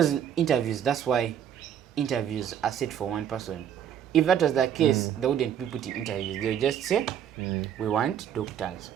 interviews, that's why interviews are set for one person. If that was the case, they wouldn't be putting interviews. They would just say, we want doctors.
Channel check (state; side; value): quieter; left; 9.3 dB